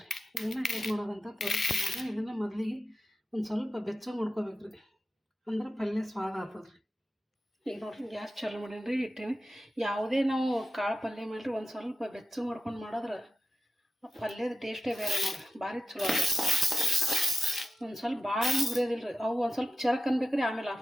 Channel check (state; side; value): normal; both; correlation 0.94